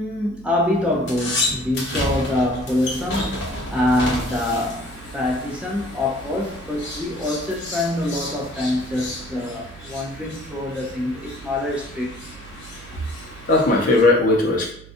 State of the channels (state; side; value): noise; right; hum, 20 dB below the sound